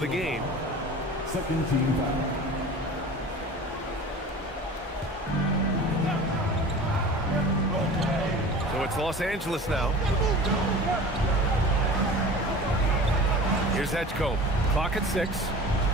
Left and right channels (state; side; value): normal; both; correlation 0.39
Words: the game. Second team foul. So it's Los Angeles now. Here's Edgecombe. Clock at 6.